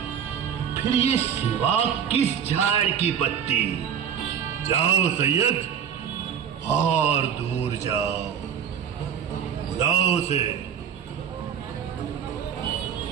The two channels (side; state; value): left; quieter; 8.3 dB